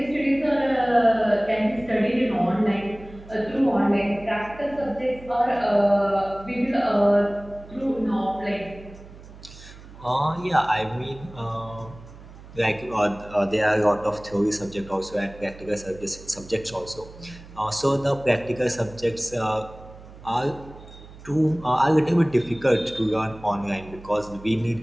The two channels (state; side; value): noise; right; hum, 18 dB below the sound